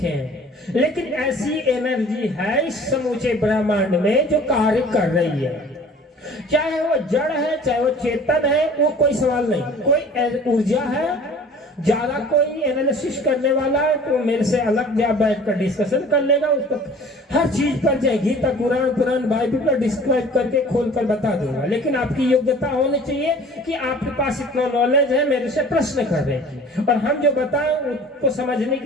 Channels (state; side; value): normal; both; correlation 0.47